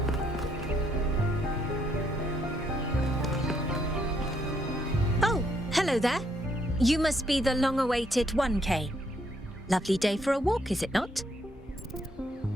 Hello there. You must be the long-awaited 1K. Lovely day for a walk, is it not?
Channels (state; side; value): normal; both; correlation 0.72